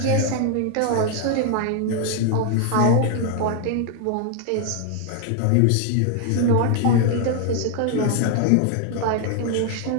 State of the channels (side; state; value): both; different; correlation 0.00